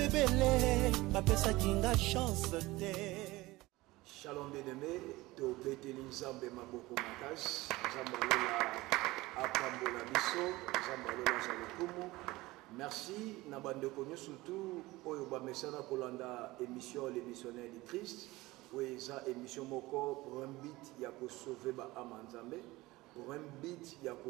bapesa kinga chance te. Shalom bien-aimé, to beteli nzambe maboko makasi, nzambalola apambola biso, nzambalola zalokumu. Merci na bandeko surtout oyo ba mesana kolanda émission les missionnaires du Christ, oui ça émission moko pour un but ya ko sauver ba âme nzambe. Pour un but, il y a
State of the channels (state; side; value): quieter; left; 19.8 dB